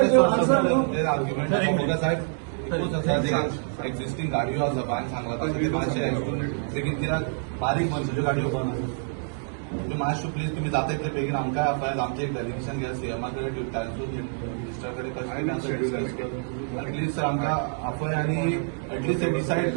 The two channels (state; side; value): silent; left; 60 dB below the other